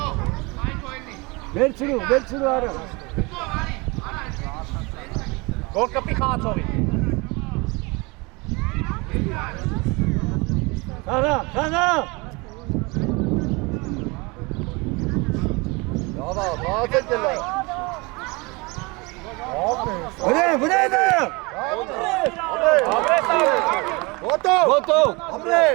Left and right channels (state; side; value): quieter; left; 26.7 dB